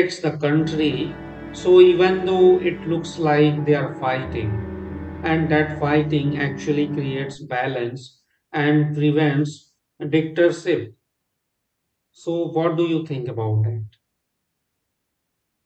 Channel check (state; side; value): identical; both; correlation 1.00